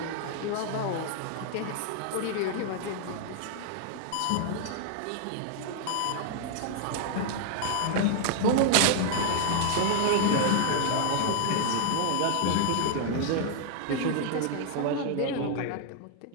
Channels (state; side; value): different; both; correlation 0.00